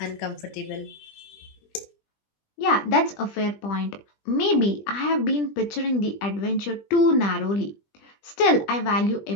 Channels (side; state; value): right; late; 20 ms